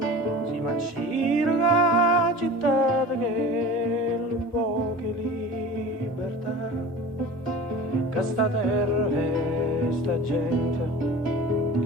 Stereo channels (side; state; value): both; normal; correlation 0.38